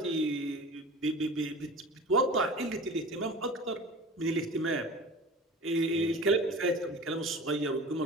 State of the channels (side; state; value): both; normal; correlation 0.38